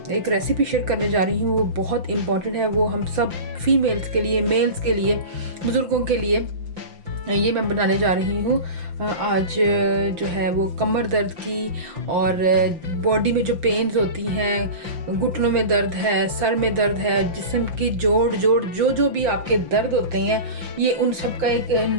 एक रेसिपी शेयर करने जा रही हूँ वो बहुत इंपॉर्टेंट है। वो हम सब फीमेल्स के लिए, मेल्स के लिए, बुज़ुर्गों के लिए ये मैं बनाने जा रही हूँ। आज जो है वो कमर दर्द की और बॉडी में जो पेन्स होती हैं, घुटनों में दर्द है, सर में दर्द है, जिस्म की जोड़ जो भी आपके दर्द होते हैं, ये उन सब का एक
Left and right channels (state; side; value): late; left; 5.8 ms